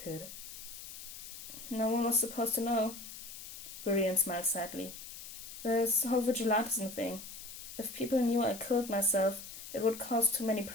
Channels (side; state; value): left; noise; hiss, 12 dB below the sound